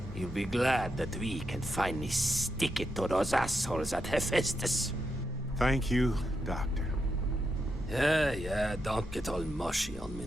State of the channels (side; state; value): both; normal; correlation 0.84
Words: he'll be glad that we can finally stick it to those assholes at Hephaestus. Thank you, Doctor. Yeah, don't get all mushy on me